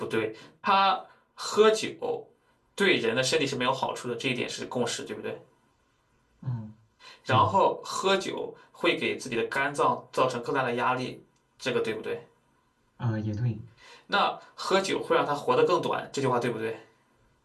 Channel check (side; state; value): both; identical; correlation 1.00